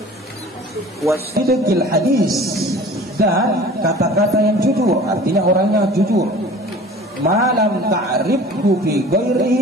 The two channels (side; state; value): both; normal; correlation 0.44